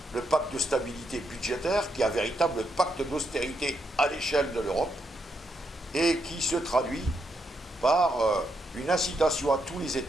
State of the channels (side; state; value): both; normal; correlation 0.79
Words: le pacte de stabilité budgétaire, qui est un véritable pacte d'austérité à l'échelle de l'Europe, et qui se traduit par une incitation à tous les